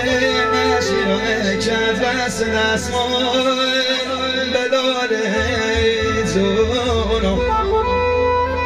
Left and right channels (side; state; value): both; identical; correlation 1.00